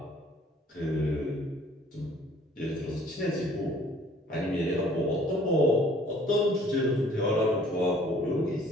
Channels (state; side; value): normal; both; correlation 0.56